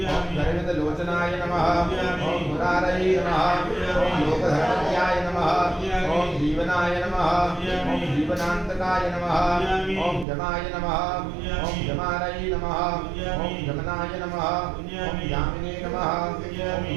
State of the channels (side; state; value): left; drops out; at 10.2 s